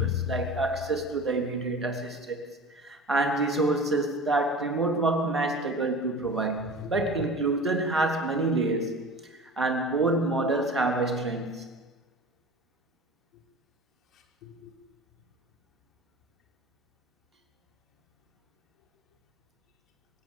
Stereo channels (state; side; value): normal; both; correlation 0.37